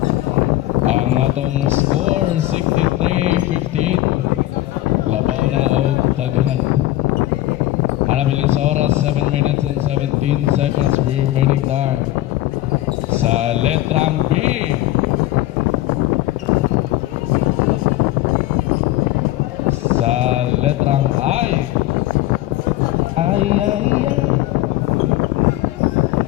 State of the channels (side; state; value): right; quieter; 15.8 dB